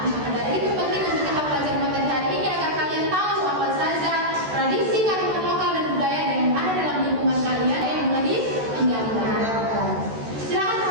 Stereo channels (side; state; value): left; late; 13 ms